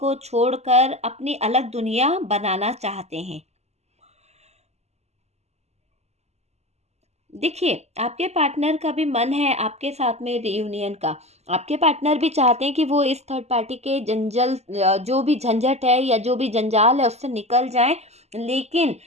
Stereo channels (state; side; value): late; left; 0.32 ms